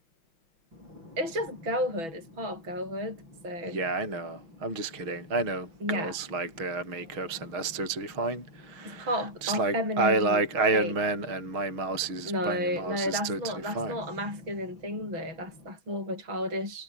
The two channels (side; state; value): left; late; 6.3 ms